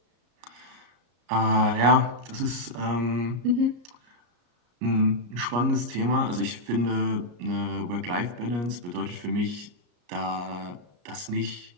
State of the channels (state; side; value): late; left; 34 ms